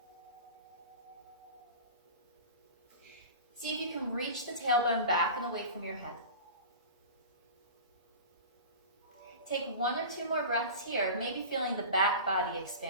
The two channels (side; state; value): both; inverted; correlation -0.33